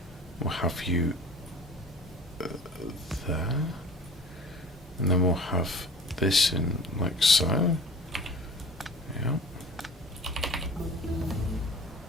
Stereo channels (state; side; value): normal; both; correlation 0.43